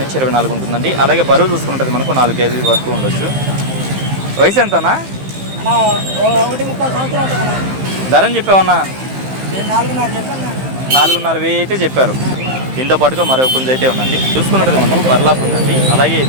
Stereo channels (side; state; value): left; late; 15 ms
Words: నుంచి 24 ఉంటుందండి. అలాగే బరువు చూసుకున్నట్టు మనకు 4 కేజీ వరకు ఉండొచ్చు. వయసు ఎంతనా? 1.5 ధర అని చెప్పావన్నా? 4,500 అయితే చెప్పారు. దీంతో పాటుగా మరో పుంజ అయితే ఉందండి. చూసుకున్నట్టు మనకు పర్లా ఉందండి. అలాగే